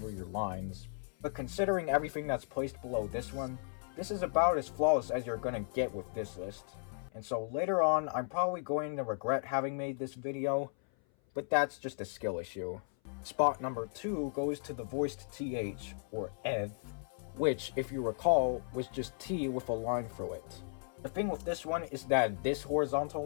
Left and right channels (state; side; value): silent; right; 54 dB below the other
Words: your lines, but considering everything that's placed below this one, this is about as flawless as you're gonna get with this list. And so later on, I'm probably going to regret having made this video, but that's just a skill issue. Spot number 2 goes to the voiced TH, or eth, which, if you recall, was just T with a line through it. The thing with this one is that this horizontal